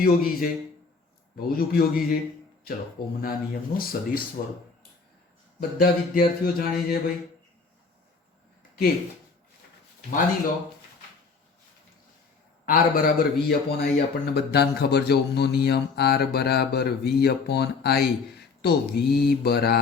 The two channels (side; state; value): right; quieter; 4.7 dB